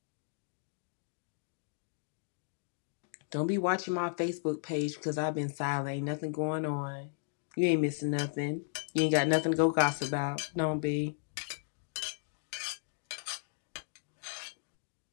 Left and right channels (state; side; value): silent; right; digital silence